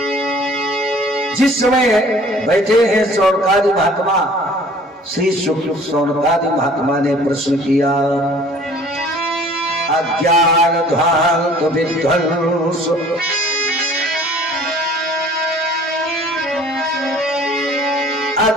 जिस समय बैठे हैं शौनकादि महात्मा, श्री शौनकादि महात्मा ने प्रश्न किया, अज्ञान ध्वांत विध्वंस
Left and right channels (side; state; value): both; normal; correlation 0.51